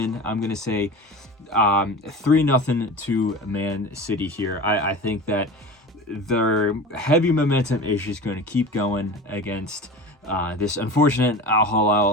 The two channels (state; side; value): normal; both; correlation 0.33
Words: I'm going to say 3-0 to Man City here. I think that their heavy momentum is just going to keep going against this unfortunate Al